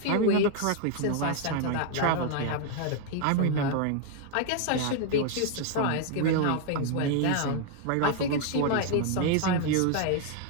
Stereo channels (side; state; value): both; different; correlation 0.00